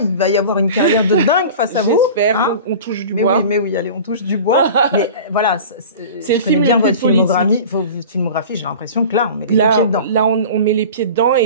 il va y avoir une carrière de dingue face à vous. J'espère, hein. On touche du bois. Mais oui, allez, on touche du bois. Mais voilà, c'est je connais bien votre filmographie, j'ai l'impression que là, on met les pieds dedans. Là, on met les pieds dedans,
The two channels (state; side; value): inverted; both; correlation -0.37